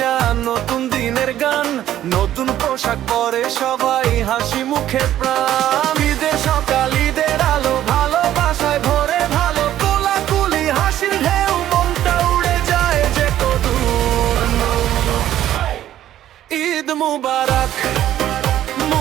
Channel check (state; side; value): quieter; left; 12.3 dB